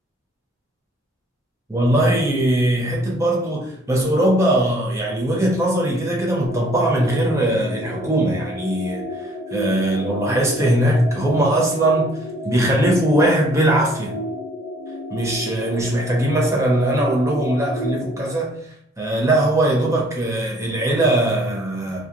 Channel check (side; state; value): both; normal; correlation 0.59